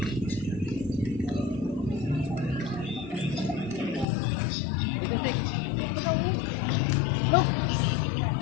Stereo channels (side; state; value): right; drops out; at 4.0 s